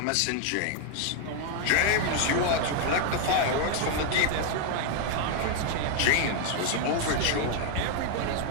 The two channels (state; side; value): different; both; correlation 0.00